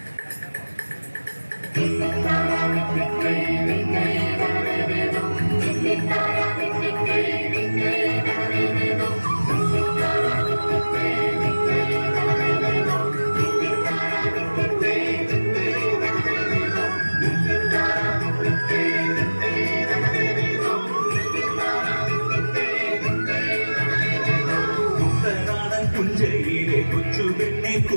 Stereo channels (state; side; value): inverted; both; correlation -1.00